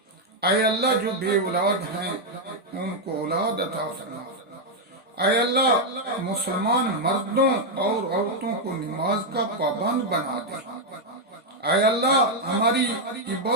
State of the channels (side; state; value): both; normal; correlation 0.00